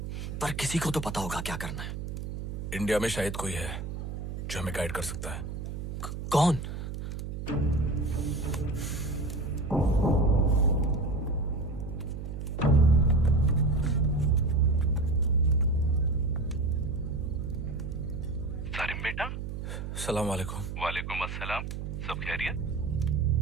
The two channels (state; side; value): noise; right; hum, 6 dB below the sound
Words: पर किसी को तो पता होगा क्या करना है। इंडिया में शायद कोई है जो हमें गाइड कर सकता है। कौन? सारिम बेटा। सलाम वालेकुम। वालेकुम अस्सलाम। सब खैरियत?